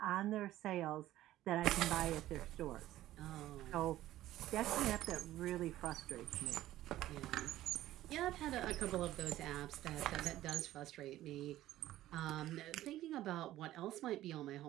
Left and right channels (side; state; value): left; quieter; 14.4 dB